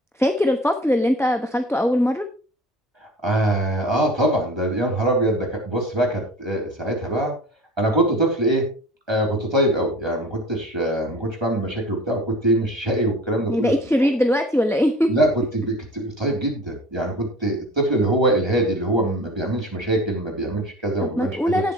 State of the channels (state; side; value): normal; both; correlation 0.42